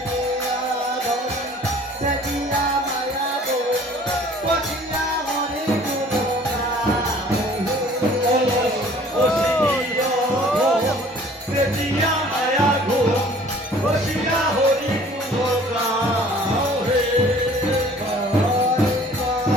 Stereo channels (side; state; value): both; normal; correlation 0.52